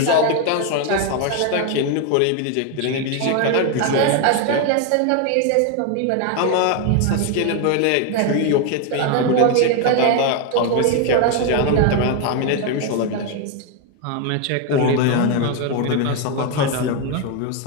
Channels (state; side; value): different; both; correlation 0.01